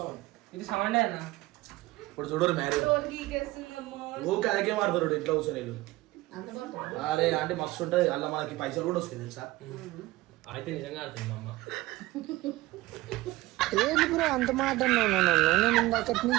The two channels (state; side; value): quieter; left; 18.8 dB